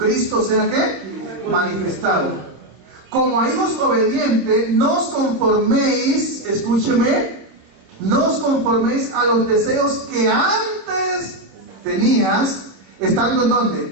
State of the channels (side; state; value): left; late; 26 ms